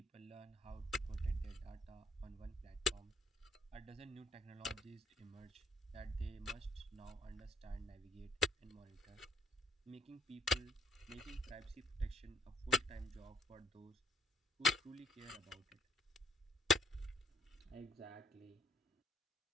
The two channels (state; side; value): normal; both; correlation 0.63